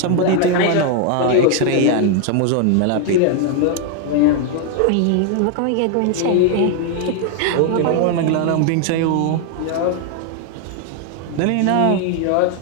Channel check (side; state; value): both; different; correlation 0.01